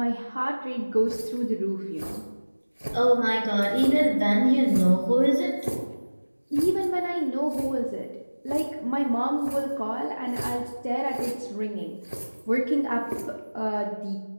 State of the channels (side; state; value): both; inverted; correlation -1.00